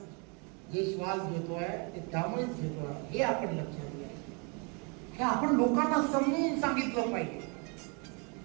जे श्वास घेतोय ते त्यामुळेच घेतोय, हे आपण लक्षात घ्या. हे आपण लोकांना समजून सांगितलं पाहिजे.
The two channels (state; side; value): quieter; left; 34.0 dB